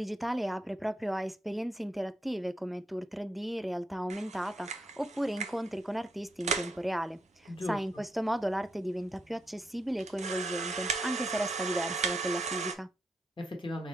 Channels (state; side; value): normal; both; correlation 0.79